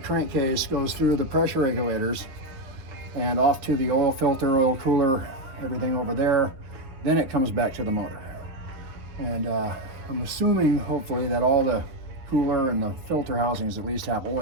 crankcase, goes through the pressure regulators and off to the oil filter, oil cooler, everything over there. Then it comes back to the motor. And I'm assuming, hopefully, that all the cooler and the filter housings at least have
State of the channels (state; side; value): late; left; 7.1 ms